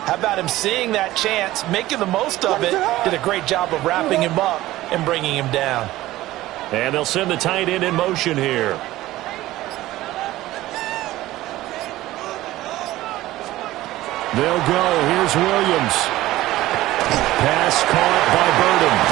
How about him seeing that chance, making the most of it, did a great job of wrapping him up and bringing him down. And they'll send the tight end in motion here. They'll go. Here's Williams. Pass caught by Burden.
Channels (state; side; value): quieter; left; 16.4 dB